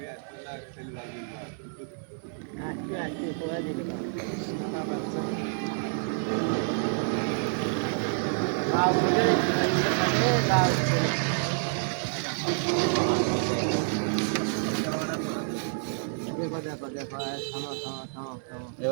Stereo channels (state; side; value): silent; left; 59 dB below the other